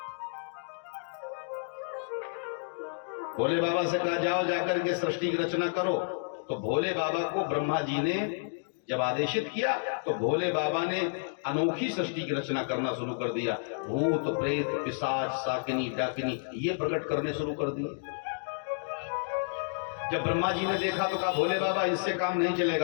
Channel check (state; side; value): silent; right; digital silence